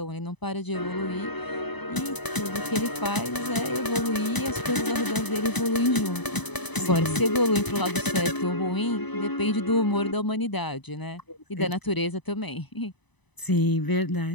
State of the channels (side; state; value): right; late; 1.0 ms